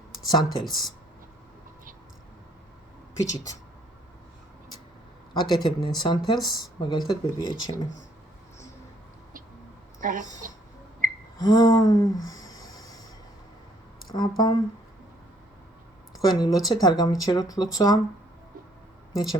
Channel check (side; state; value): both; normal; correlation 0.65